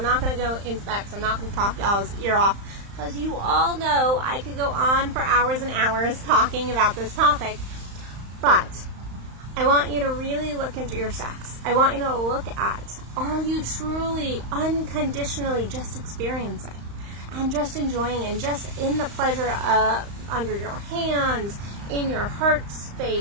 not going to go into that, because I'm not going to talk y'all's ear off. Because you all know I could go on for hours and hours talking about this topic. But I want you to really look into your sex. I want you to look at, are you truly unconditionally just experiencing and just enjoying and just in the pleasure under your hands, in your heart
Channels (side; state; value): left; late; 35 ms